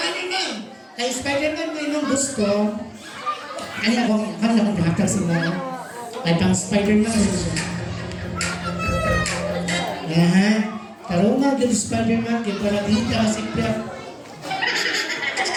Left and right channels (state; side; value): identical; both; correlation 1.00